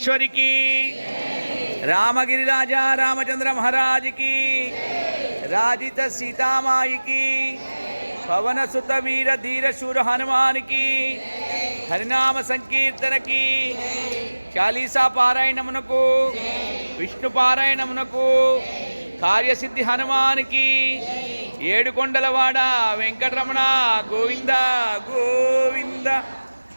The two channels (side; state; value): both; inverted; correlation -1.00